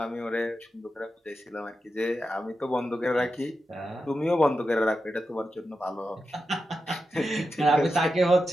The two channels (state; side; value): normal; both; correlation 0.90